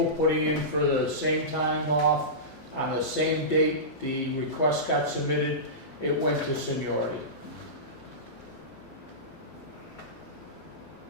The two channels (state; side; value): normal; both; correlation -0.19